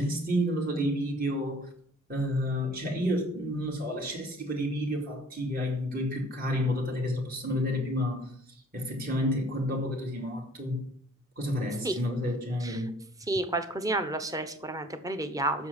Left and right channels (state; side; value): normal; both; correlation 0.54